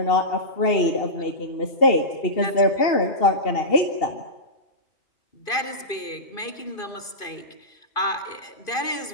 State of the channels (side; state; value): right; late; 2.5 ms